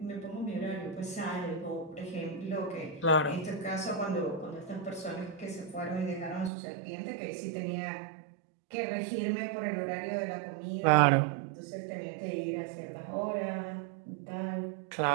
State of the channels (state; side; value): drops out; left; at 6.5 s